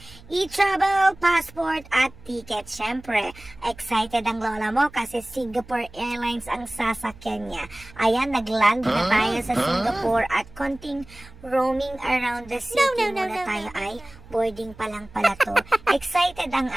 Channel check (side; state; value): right; noise; hum, 21 dB below the sound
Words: e-travel, passport at ticket. Siyempre, excited ang lola mo kasi Singapore Airlines ang sasakyan niya. Ayan, nagland na tayo sa Singapore at konting roaming around the city muna tayo ay boarding pa lang pala to. Excited ang